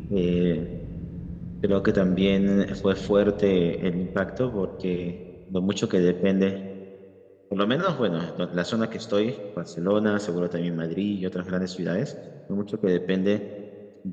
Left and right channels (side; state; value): both; identical; correlation 1.00